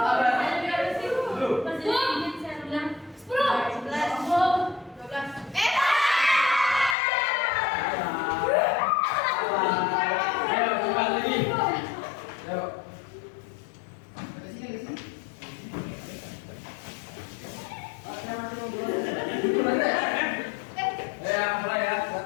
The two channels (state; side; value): drops out; right; at 7.0 s